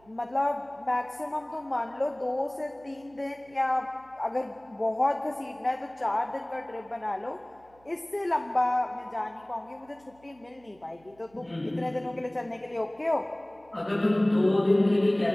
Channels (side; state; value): right; noise; hum, 29 dB below the sound